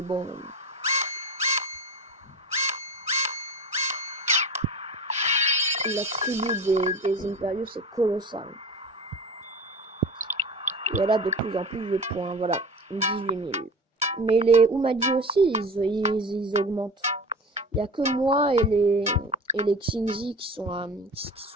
bon... la tribu des Imperiaux, c'est colossal. Et elle a de plus en plus de points. Voilà, 18 000. Mais les Umadi aussi, ils augmentent. Il n'y a que moi et les Xingzi qui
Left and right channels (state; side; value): normal; both; correlation 0.33